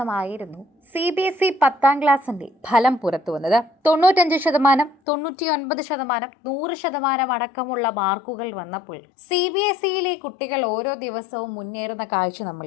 CBSE 10ാം ക്ലാസിന്റെ ഫലം പുറത്തു വന്നത്. 95%, 99%, 100% അടക്കമുള്ള മാർക്കുകൾ വന്നപ്പോൾ CBSEയിലെ കുട്ടികൾ ഓരോ ദിവസവും മുന്നേറുന്ന കാഴ്ച നമ്മൾ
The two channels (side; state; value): right; drops out; at 5.0 s